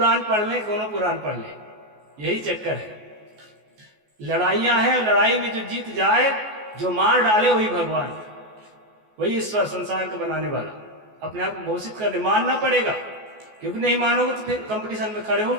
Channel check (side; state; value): left; late; 14 ms